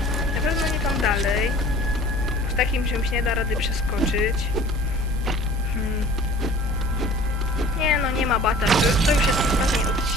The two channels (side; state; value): both; normal; correlation 0.47